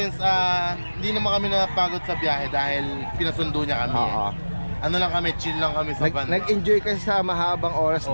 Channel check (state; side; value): inverted; both; correlation -1.00